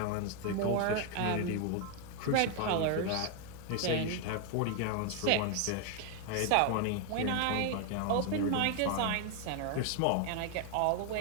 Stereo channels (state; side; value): different; both; correlation 0.01